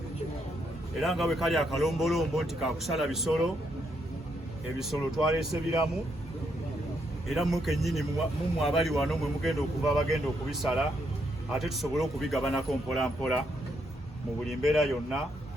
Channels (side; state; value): both; normal; correlation 0.76